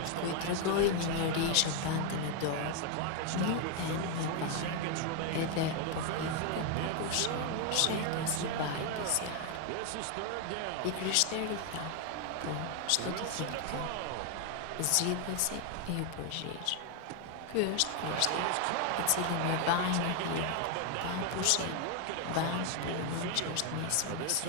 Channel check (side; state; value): both; different; correlation 0.01